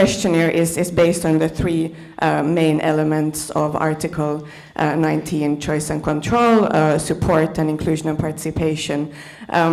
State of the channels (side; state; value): both; identical; correlation 1.00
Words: is based on the 3 main elements of Article 19, choice and control, support and inclusion and participation.